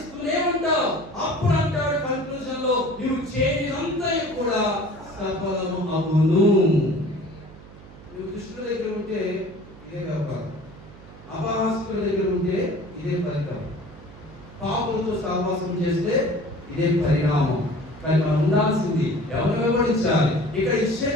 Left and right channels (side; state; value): right; noise; hum, 19 dB below the sound